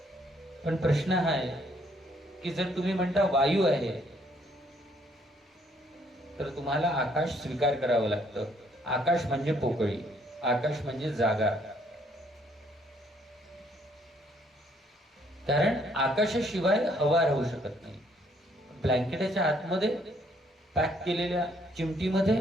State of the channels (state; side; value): normal; both; correlation 0.67